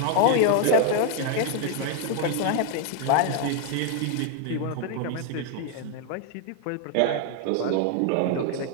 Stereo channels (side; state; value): both; different; correlation 0.00